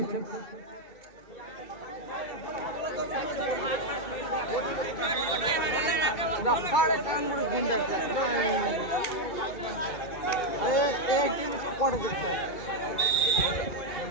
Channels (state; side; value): late; right; 2.3 ms